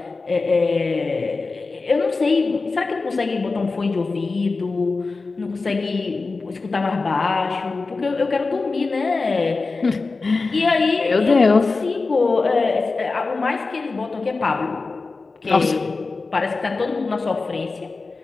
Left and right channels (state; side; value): quieter; right; 3.9 dB